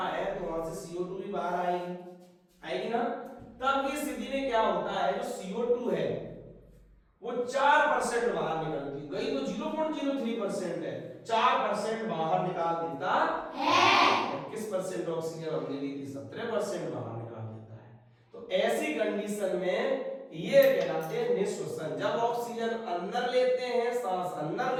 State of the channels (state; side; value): identical; both; correlation 1.00